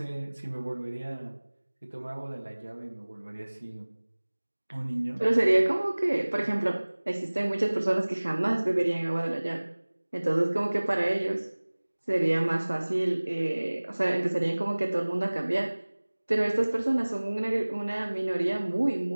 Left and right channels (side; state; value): both; inverted; correlation -1.00